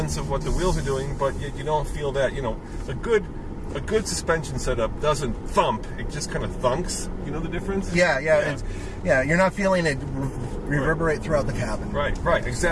of what the wheels are doing, but yet you don't feel that, a good suspension setup doesn't thump. It just kind of thunks. You know the difference? Yeah. You're not feeling it reverberate throughout the cabin. Right,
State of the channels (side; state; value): both; identical; correlation 1.00